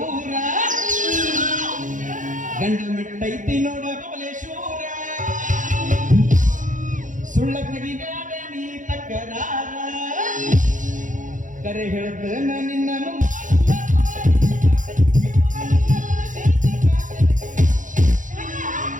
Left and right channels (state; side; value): late; left; 0.37 ms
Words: ಗಂಡ ಮೆಟ್ಟೈತಿ ನೋಡ ಬಬಲೇಶ್ವರ, ಸುಳ್ಳ ತೆಗಿಬೇಡ ನೀ ತಕರಾರ, ಕರೆ ಹೇಳ್ತೇನ ನಿನ್ನನು.